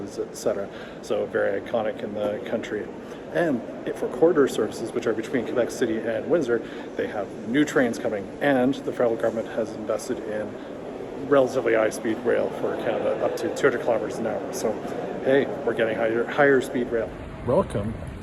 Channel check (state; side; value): identical; both; correlation 1.00